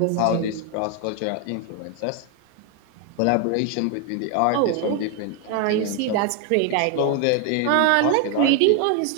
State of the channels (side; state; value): both; different; correlation 0.01